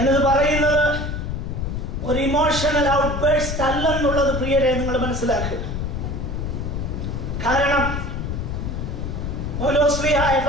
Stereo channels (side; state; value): left; noise; rumble, 3 dB below the sound